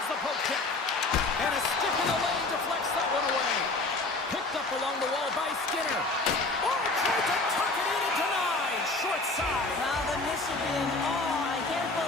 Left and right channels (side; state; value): right; quieter; 3.3 dB